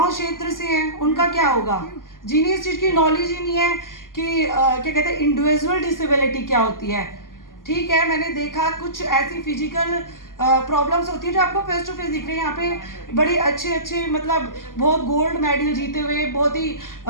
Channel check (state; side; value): late; right; 0.90 ms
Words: क्षेत्र से हैं, उनका क्या होगा? जिन्हें इस चीज़ की नॉलेज ही नहीं है कि क्या कहते हैं इंडिविजुअल डिसेबिलिटी क्या होती है। ठीक है, मैंने देखा कुछ ऐसी फिजिकल प्रॉब्लम्स होती है जो आपको फेस टू फेस दिख रही है। यहाँ पे बड़े अच्छे मतलब बहुत गोल्ड मेडल जीते हुए, बहुत ही